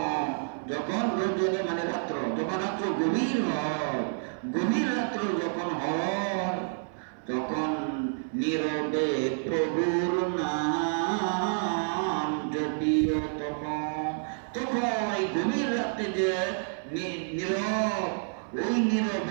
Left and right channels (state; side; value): silent; left; 55 dB below the other